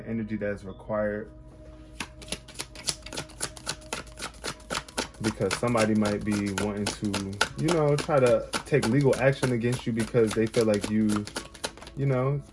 energy that's required, because somebody might be wanting to, you know, try to take legal action against you because they feel like you know,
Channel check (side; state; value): both; identical; correlation 1.00